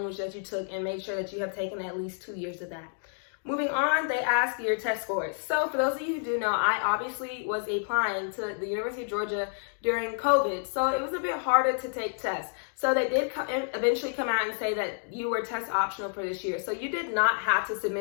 that you took and make sure that you have taken at least 2 years of that. Moving on, they ask your test scores. So for those of you who do know, I obviously was applying to the University of Georgia during COVID. So it was a bit harder to take tests. So they did eventually come out and say that you were test optional for this year. So you did not have to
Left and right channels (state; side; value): silent; right; digital silence